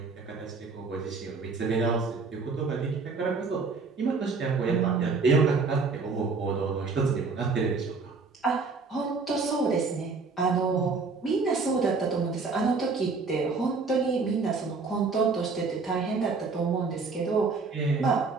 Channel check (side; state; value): left; quieter; 4.4 dB